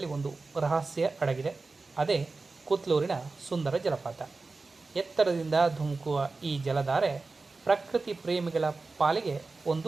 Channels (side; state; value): left; quieter; 3.8 dB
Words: ಒಂದು ರಹಸ್ಯ ಅಡಗಿದೆ. ಅದೇ ಕುತ್ಲೂರಿನ ಸುಂದರ ಜಲಪಾತ. ಎತ್ತರದಿಂದ ಧುಮುಕುವ ಈ ಜಲಧಾರೆ ಪ್ರಕೃತಿ ಪ್ರೇಮಿಗಳ ಪಾಲಿಗೆ